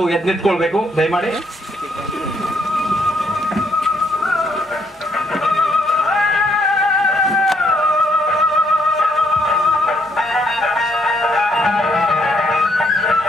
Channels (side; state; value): both; normal; correlation 0.71